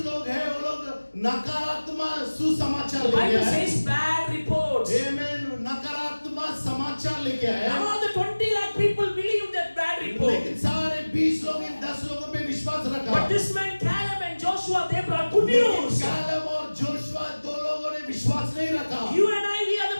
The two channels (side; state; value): both; inverted; correlation -1.00